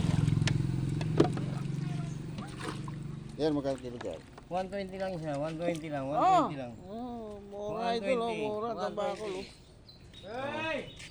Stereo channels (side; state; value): both; identical; correlation 1.00